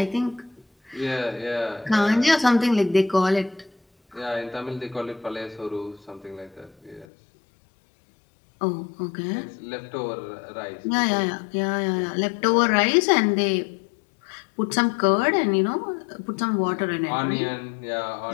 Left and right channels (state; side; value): drops out; right; at 7.1 s